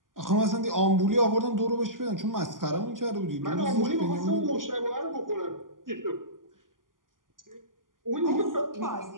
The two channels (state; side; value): late; left; 0.90 ms